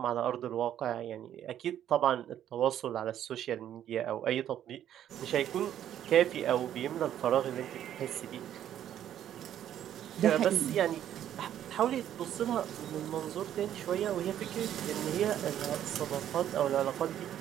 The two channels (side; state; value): left; quieter; 10.9 dB